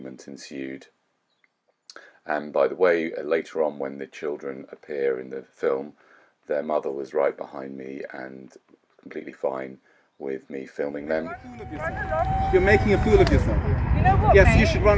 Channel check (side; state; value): both; identical; correlation 1.00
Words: ensued. And by the way, later on when the children appear in the film, their mother was right behind me and completely fine with me filming them. You're making a fool of yourself. You know what, Yes, mate? you should run